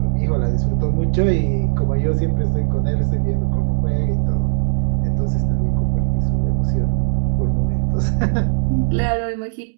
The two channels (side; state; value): left; silent; digital silence